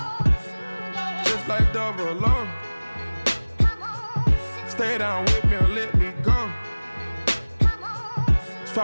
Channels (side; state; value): both; inverted; correlation -1.00